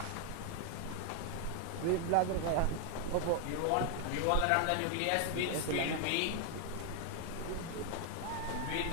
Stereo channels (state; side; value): different; both; correlation 0.00